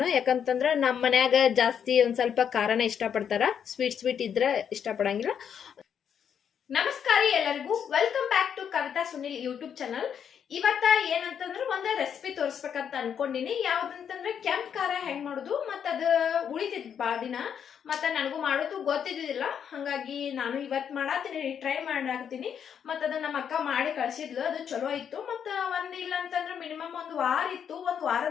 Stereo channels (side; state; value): right; quieter; 8.1 dB